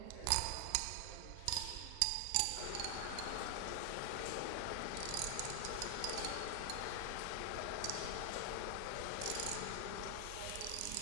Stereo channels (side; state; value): both; different; correlation 0.00